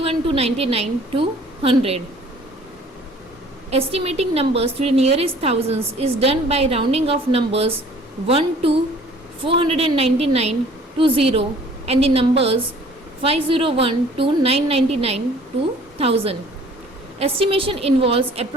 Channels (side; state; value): both; normal; correlation 0.53